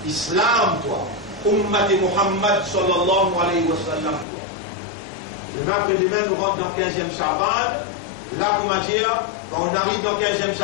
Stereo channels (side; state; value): right; drops out; at 4.2 s